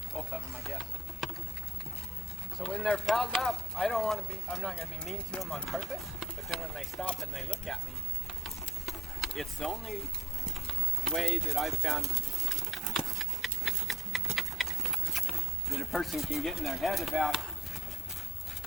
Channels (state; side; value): normal; both; correlation 0.66